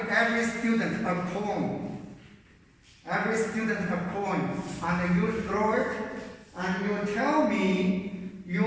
every student a coin. Every student a coin, and you throw it, and you tell me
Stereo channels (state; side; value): identical; both; correlation 1.00